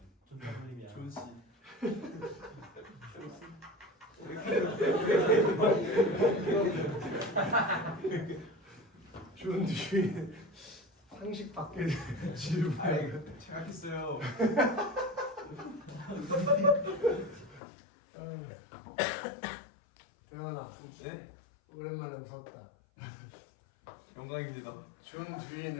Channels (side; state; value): right; drops out; at 17.6 s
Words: 존댓말이야. 존 씨. 존 듀이. 상식 밖의 질문. 생각했어요. 대현아, 네. 오랜만에 웃었다. 영광입니다. 존